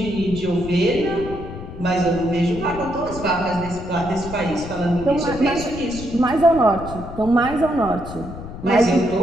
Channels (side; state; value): left; noise; rumble, 11 dB below the sound